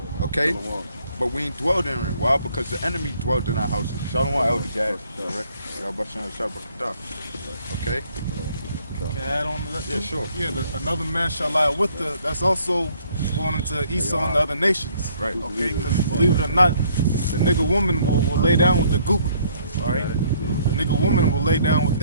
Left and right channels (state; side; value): inverted; both; correlation -0.63